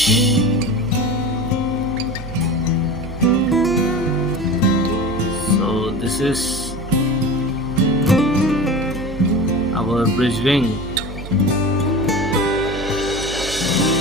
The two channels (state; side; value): noise; right; hum, 11 dB below the sound